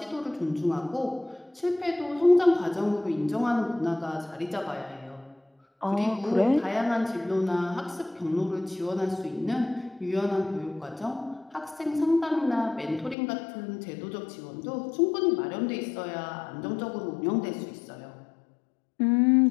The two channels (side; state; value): right; drops out; at 13.2 s